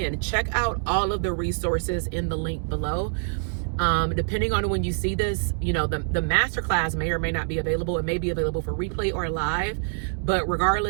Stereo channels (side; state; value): left; silent; digital silence